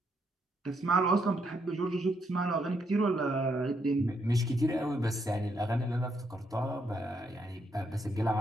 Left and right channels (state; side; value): normal; both; correlation 0.76